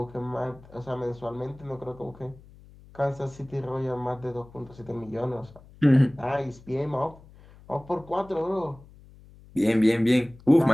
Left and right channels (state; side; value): noise; left; hum, 23 dB below the sound